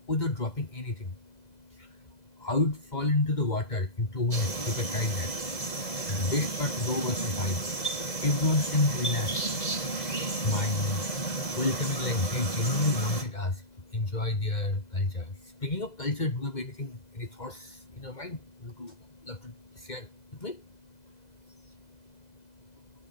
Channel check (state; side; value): late; right; 2.0 ms